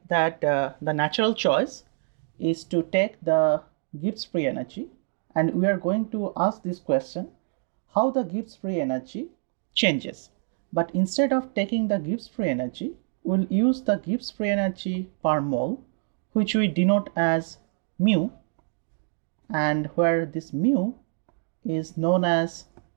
that the natural choice is to take the Gibbs free energy, and we are going to ask this question, how the Gibbs free energy changes. But instead of taking the Gibbs free energy, we'll use the Gibbs free energy per mole, which we denote as mu, and where this mu is known as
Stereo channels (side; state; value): left; silent; digital silence